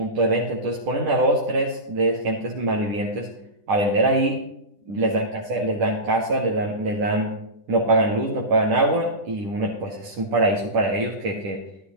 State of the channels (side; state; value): left; late; 10 ms